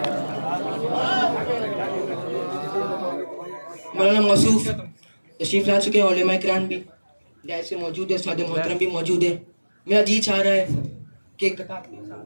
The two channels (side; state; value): both; inverted; correlation -1.00